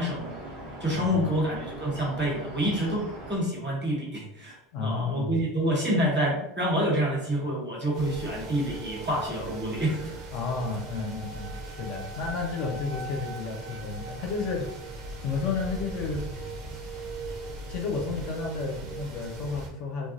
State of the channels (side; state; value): both; normal; correlation 0.37